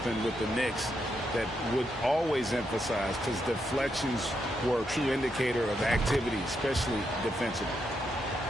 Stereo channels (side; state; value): both; normal; correlation 0.81